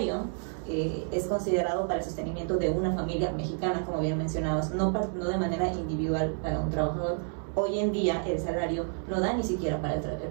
es considerado para el sostenimiento de una familia mexicana, como bien mencionabas, no de manera individual para un trabajador. Hoy en día el salario no da ni siquiera para el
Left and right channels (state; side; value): silent; left; 58 dB below the other